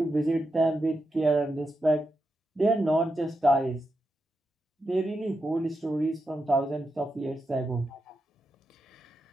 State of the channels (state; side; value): normal; both; correlation 0.86